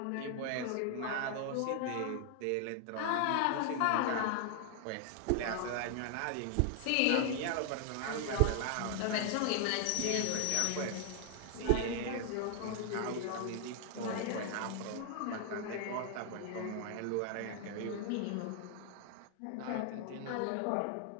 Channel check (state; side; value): different; both; correlation 0.00